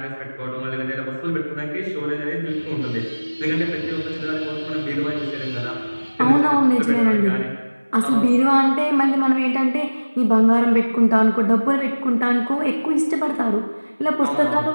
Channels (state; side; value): inverted; both; correlation -1.00